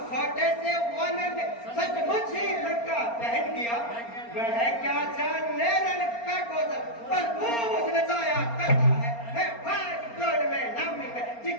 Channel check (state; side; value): late; right; 4.3 ms